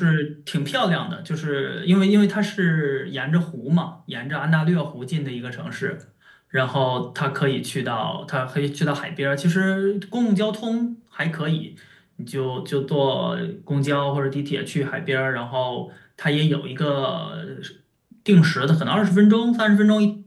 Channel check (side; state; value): both; identical; correlation 1.00